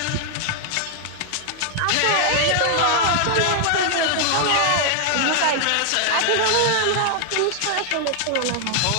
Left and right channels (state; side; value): different; both; correlation 0.00